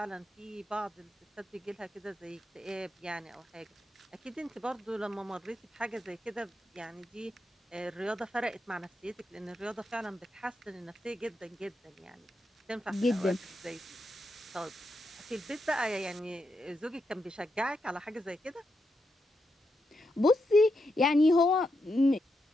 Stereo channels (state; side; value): normal; both; correlation 0.84